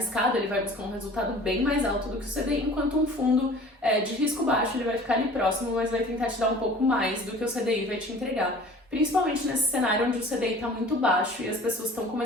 ele vai buscar um resultado bem mais alto do que o CDI, enquanto um fundo de risco baixo, ele vai ficar ali próximo, mas vai tentar te dar um pouco mais do que o CDI vai te entregar. Principalmente nesse cenário onde o CDI está muito baixo e as pessoas estão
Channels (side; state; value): both; normal; correlation 0.46